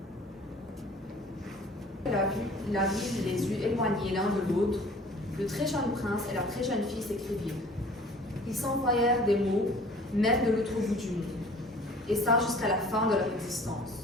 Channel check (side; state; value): both; normal; correlation 0.49